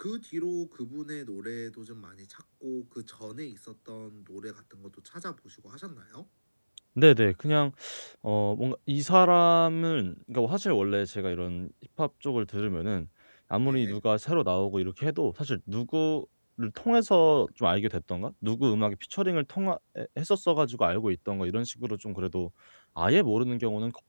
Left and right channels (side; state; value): both; inverted; correlation -1.00